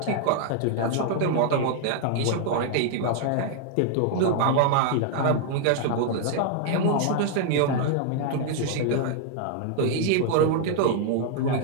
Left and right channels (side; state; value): both; different; correlation 0.00